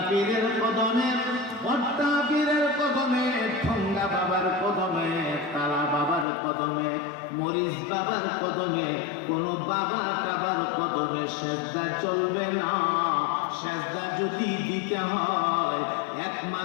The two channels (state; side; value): drops out; right; at 6.2 s